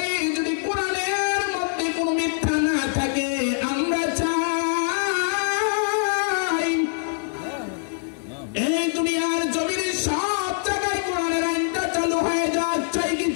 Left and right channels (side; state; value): right; silent; 63 dB below the other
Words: যদি কোরআনের মধ্যে কোনো মিথ্যা না থাকে, আমরা চাই এই দুনিয়ার জমিনে সব জায়গায় কোরআনের আইনটা চালু হয়ে যাক। চাই কি